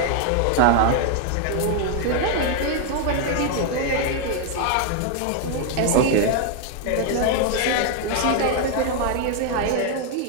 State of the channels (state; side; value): different; both; correlation 0.00